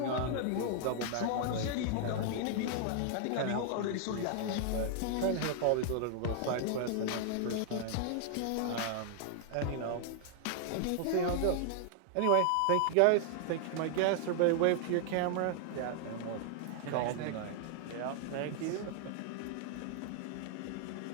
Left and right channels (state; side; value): different; both; correlation 0.00